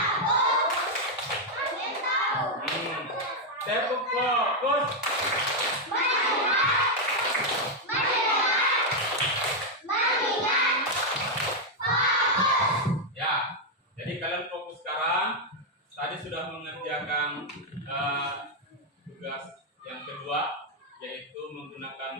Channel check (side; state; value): both; normal; correlation 0.00